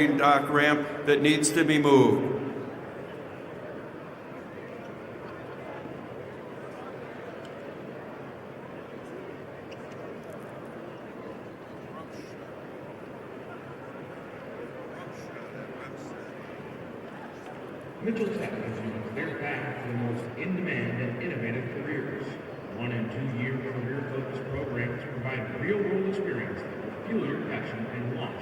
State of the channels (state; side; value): identical; both; correlation 1.00